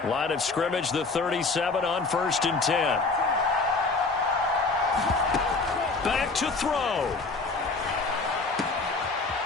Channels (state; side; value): quieter; right; 3.9 dB